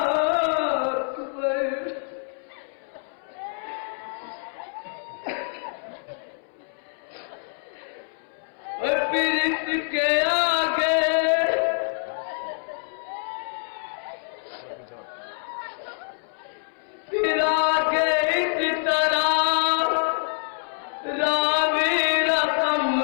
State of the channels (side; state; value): right; silent; 61 dB below the other